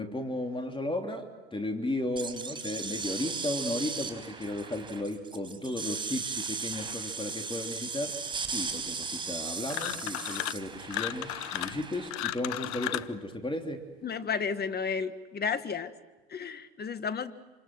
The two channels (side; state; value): both; normal; correlation 0.43